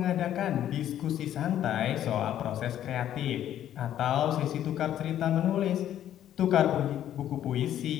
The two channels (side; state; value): right; quieter; 11.3 dB